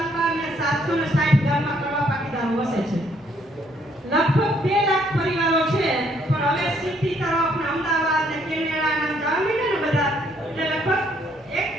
અને 760 ગામમાં કડવા પાટીદારો વસે છે. લગભગ 2 લાખ પરિવારો છે, પણ હવે સિટી તરફ ને અમદાવાદ ને કેનેડા ને જવા માંડ્યા ને બધા, એટલે લગભગ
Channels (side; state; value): both; normal; correlation 0.67